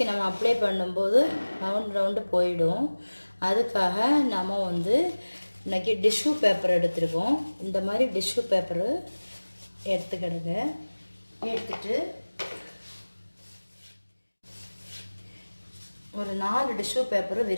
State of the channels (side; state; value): both; inverted; correlation -1.00